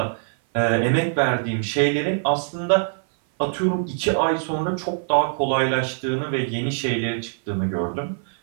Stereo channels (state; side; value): silent; left; 57 dB below the other